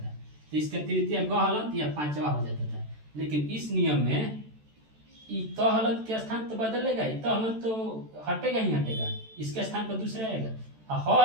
तो इसका तृतीय ग हलंत या पांचवा हो जाता था। लेकिन इस नियम में त हलंत के स्थान तो बदलेगा ही, त हलंत तो हटेगा ही हटेगा, इसके स्थान पर दूसरा आएगा, ह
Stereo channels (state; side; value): late; left; 14 ms